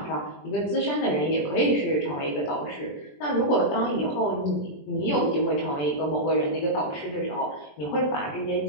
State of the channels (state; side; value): late; right; 20 ms